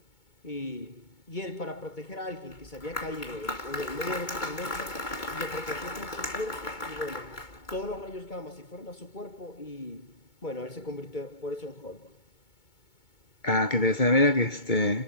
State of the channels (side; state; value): right; late; 2.2 ms